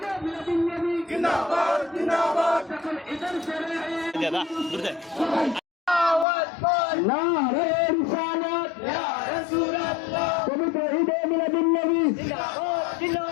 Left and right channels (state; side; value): drops out; right; at 6.2 s